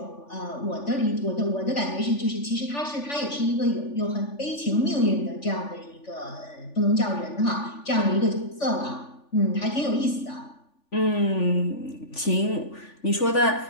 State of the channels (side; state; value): right; late; 3.5 ms